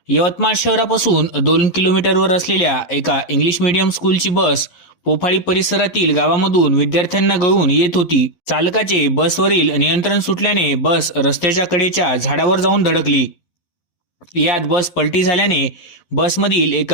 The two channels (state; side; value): late; right; 11 ms